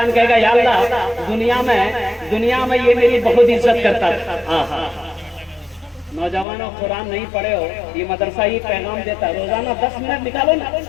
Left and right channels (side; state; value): right; drops out; at 6.5 s